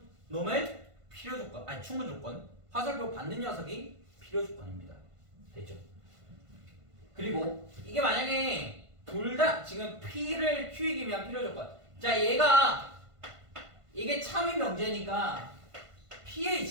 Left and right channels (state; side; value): late; left; 1.5 ms